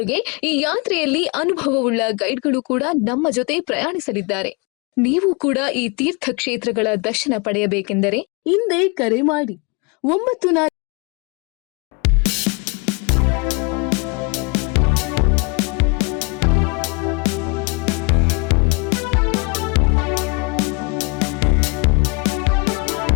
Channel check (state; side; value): quieter; right; 30.7 dB